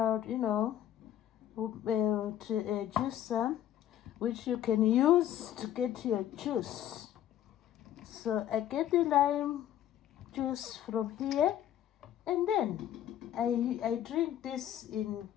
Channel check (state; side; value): quieter; right; 11.4 dB